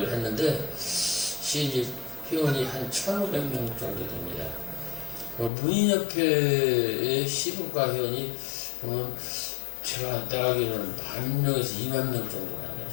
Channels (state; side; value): drops out; right; at 5.5 s